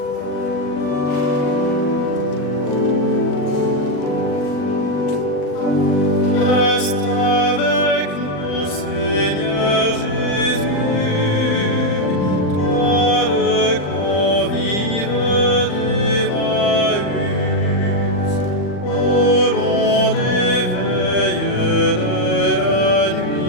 Reste avec nous, Seigneur Jésus, toi le convive d'Emmaüs, au long des veilles de la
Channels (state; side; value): late; right; 40 ms